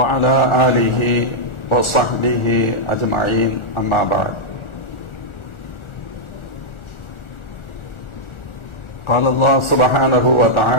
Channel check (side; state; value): right; late; 1.4 ms